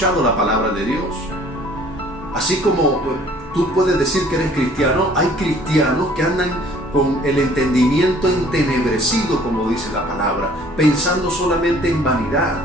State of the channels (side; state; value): both; normal; correlation 0.55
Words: la palabra de Dios. Así como tú puedes decir que eres cristiano, hay cristianos que andan con el entendimiento entenebrecido, como dice la palabra, pensando solamente en vanidad,